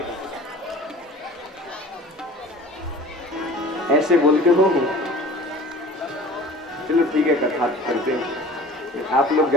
ऐसे बोलते हो चलो ठीक है कथा करते हैं, आप लोग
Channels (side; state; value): both; normal; correlation 0.42